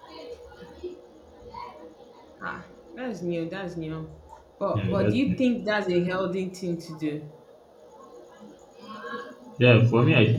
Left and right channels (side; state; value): both; identical; correlation 1.00